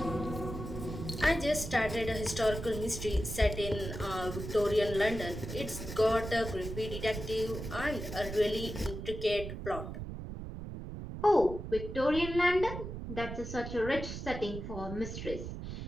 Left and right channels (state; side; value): noise; right; rumble, 7 dB below the sound